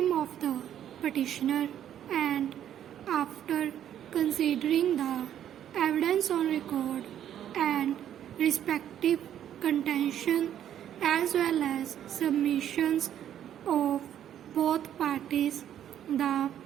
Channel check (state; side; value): quieter; left; 10.4 dB